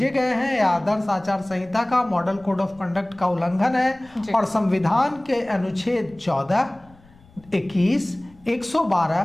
गए हैं, यह आदर्श आचार संहिता का, मॉडल कोड ऑफ कंडक्ट का उल्लंघन है और संविधान के अनुच्छेद 14, 21, 112,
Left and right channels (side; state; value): left; noise; rumble, 27 dB below the sound